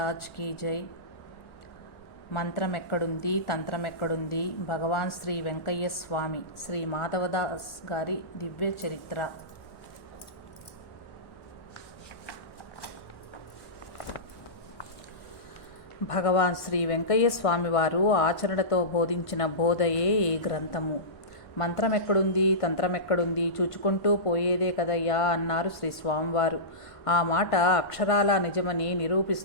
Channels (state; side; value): late; right; 1.1 ms